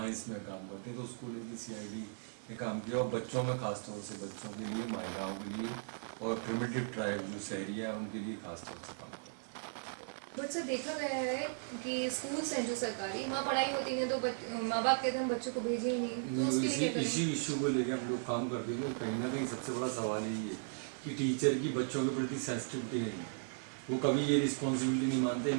में काम करते हैं, तो उसको लेके CID ने काम किया और बच्चों में खास तौर से बच्चों के लिए, महिलाओं के लिए और प्रिमिटिव ट्राइब जो शहरी है उनके लिए खास तौर से काम करते हैं। बट सर, देखा गया है कि स्कूल्स हैं जो सरकारी, वहाँ पढ़ाई होती है तो माँ बाप कहते हैं बच्चों को भेजे ही नहीं, तो उसके लिए क्या करें? इसी इशू को लेकर हम लोग काम करते हैं। कहीं ना कहीं सबसे बड़ा सवाल यही है कि टीचर की बच्चों के प्रति सेंसिटिविटी नहीं है, वो कभी ये रिस्पॉन्सिबिलिटी नहीं मानते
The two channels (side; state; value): left; silent; digital silence